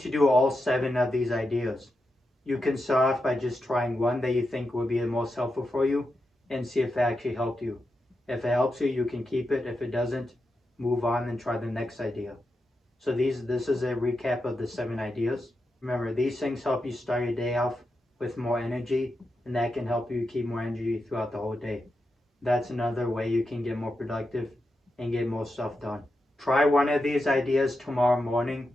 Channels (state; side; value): normal; both; correlation 0.87